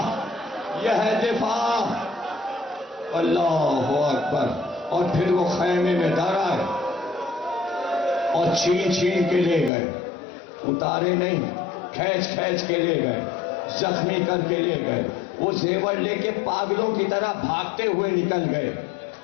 یہ ہے دفاع۔ اللہ اکبر۔ اور پھر وہ خیمے میں در آئے اور چھین چھین کے لے گئے، اتارے نہیں، کھینچ کھینچ کے لے گئے، زخمی کر کے لے گئے، وہ زیور لے کے پاگلوں کی طرح بھاگتے ہوئے نکل گئے،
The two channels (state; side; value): drops out; right; at 9.7 s